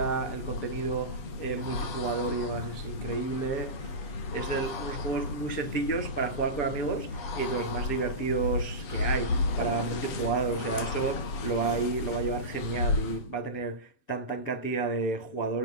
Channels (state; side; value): late; right; 7.6 ms